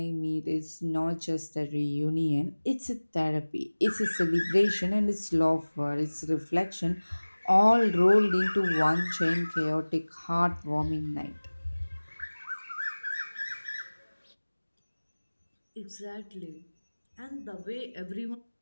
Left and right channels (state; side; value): inverted; both; correlation -1.00